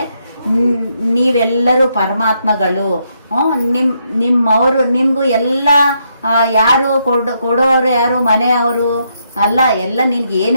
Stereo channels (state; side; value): inverted; both; correlation -0.77